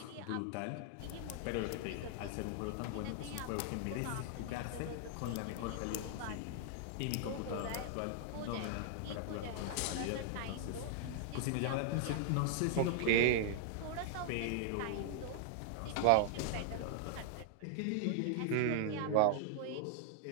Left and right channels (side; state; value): both; different; correlation 0.00